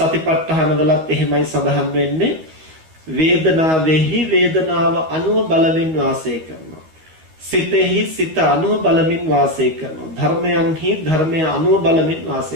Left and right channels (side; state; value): left; late; 13 ms